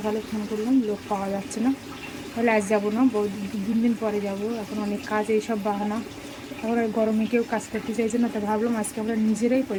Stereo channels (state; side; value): identical; both; correlation 1.00